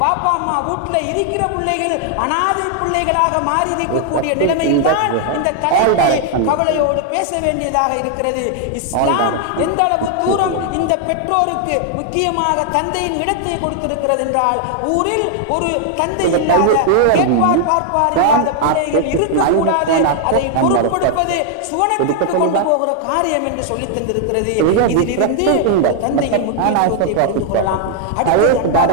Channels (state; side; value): different; both; correlation 0.00